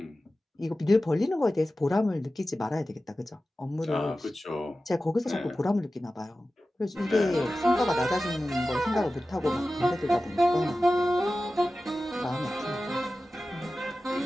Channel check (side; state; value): both; normal; correlation 0.95